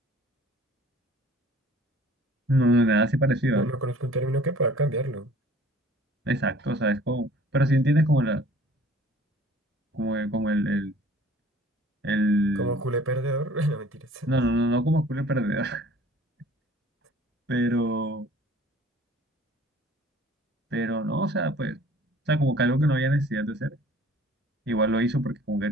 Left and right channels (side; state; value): both; normal; correlation 0.51